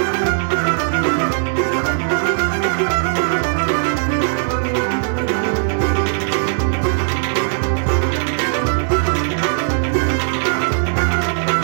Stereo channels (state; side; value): silent; left; digital silence